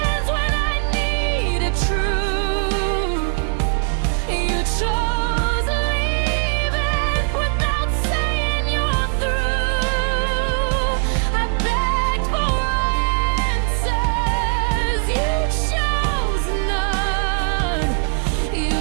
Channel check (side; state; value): left; silent; 59 dB below the other